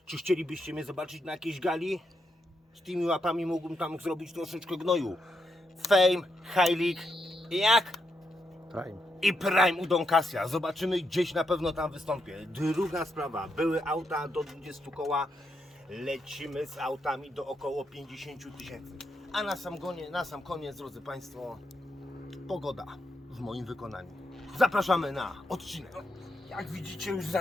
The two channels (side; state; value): both; normal; correlation 0.81